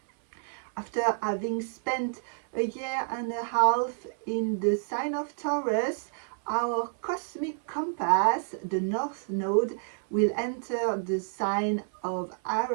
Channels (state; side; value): silent; left; 58 dB below the other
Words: After having spent a year and a half in the sign of Taurus, our cosmic compass, the north node, will enter the sign of